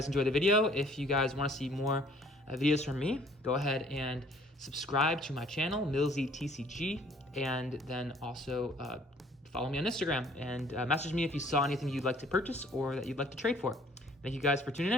enjoyed the video. If you guys want to see more videos from me, go ahead and subscribe to my channel, MillsyTCG, and then also follow me on Instagram and message me if you saw anything you'd like to purchase or that you'd like to trade for. Thank you guys for tuning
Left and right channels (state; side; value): normal; both; correlation 0.57